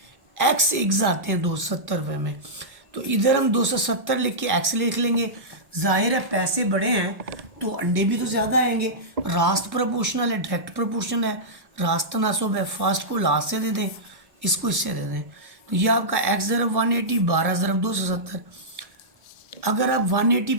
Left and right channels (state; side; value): late; left; 1.1 ms